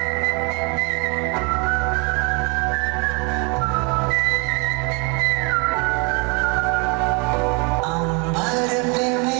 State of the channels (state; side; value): quieter; left; 32.1 dB